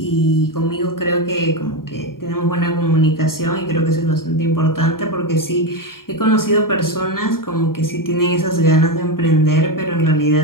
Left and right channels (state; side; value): late; right; 0.92 ms